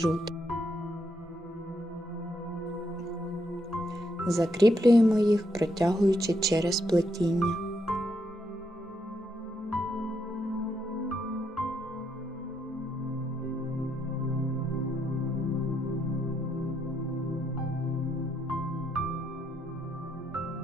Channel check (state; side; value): normal; both; correlation 0.77